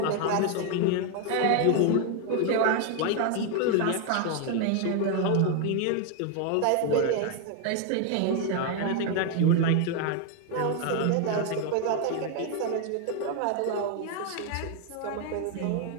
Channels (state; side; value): different; both; correlation 0.01